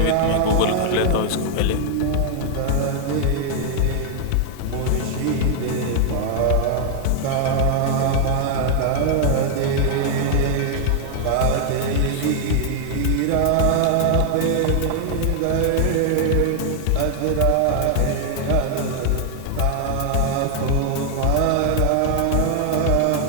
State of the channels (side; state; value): both; different; correlation 0.00